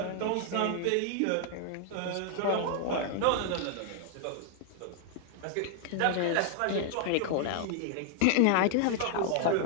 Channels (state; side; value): different; both; correlation 0.00